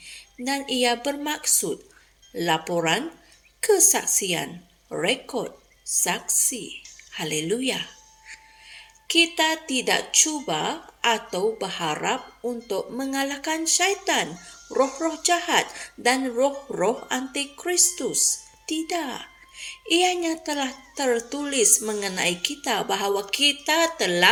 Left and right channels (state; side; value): identical; both; correlation 1.00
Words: dan ia bermaksud laporan, kesaksian, rekod, saksi. Haleluya. Kita tidak cuba atau berharap untuk mengalahkan syaitan, roh-roh jahat dan roh-roh antikristus. Tidak. Ianya telah tertulis mengenai kita bahawa kita